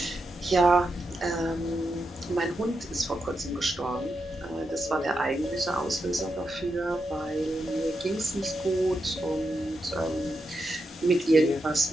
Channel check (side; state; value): both; normal; correlation 0.86